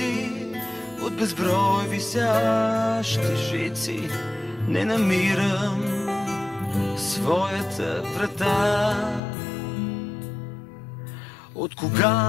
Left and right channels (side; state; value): right; drops out; at 9.2 s